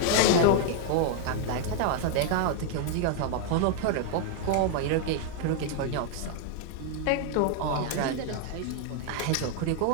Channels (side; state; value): both; different; correlation 0.00